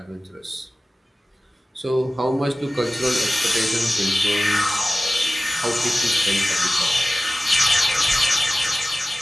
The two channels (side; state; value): both; normal; correlation 0.97